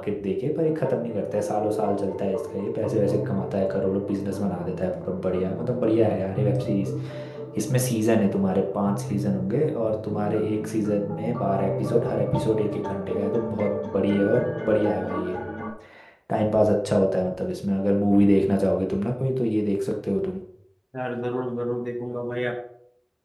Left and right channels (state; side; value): identical; both; correlation 1.00